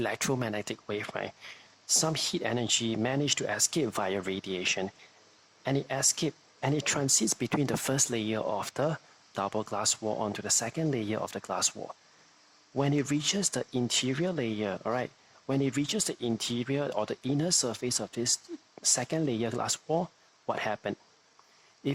wave, right, some heat energy managed to escape via radiation, and it transits between the first layer of the double glass wall onto the second layer of the glass wall. When it reaches the interior layer, all right, when it reaches the interior or the inner surface of this second layer glass wall, what happened?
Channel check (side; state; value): both; identical; correlation 1.00